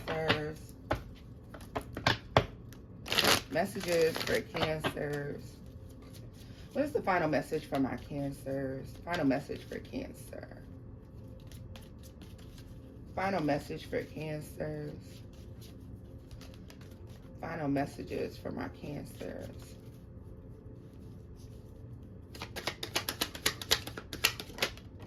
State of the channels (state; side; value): identical; both; correlation 1.00